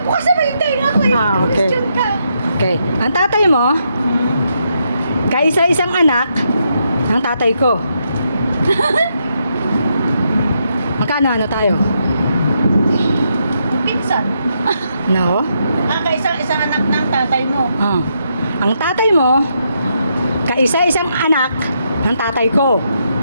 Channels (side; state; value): both; inverted; correlation -0.79